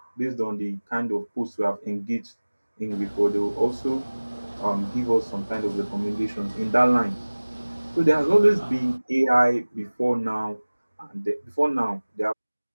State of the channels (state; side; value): inverted; both; correlation -1.00